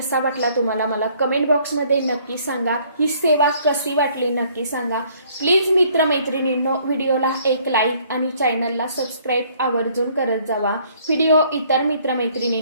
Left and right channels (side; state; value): both; inverted; correlation -0.61